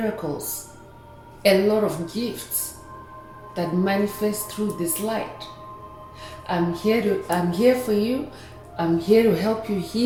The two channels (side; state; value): both; identical; correlation 1.00